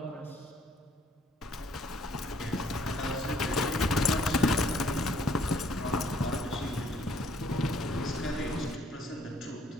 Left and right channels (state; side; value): normal; both; correlation 0.63